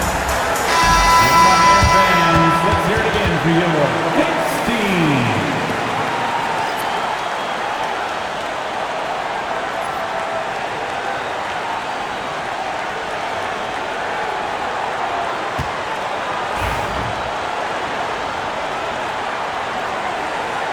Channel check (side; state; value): both; identical; correlation 1.00